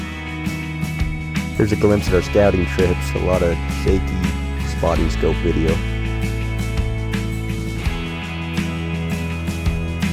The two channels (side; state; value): both; identical; correlation 1.00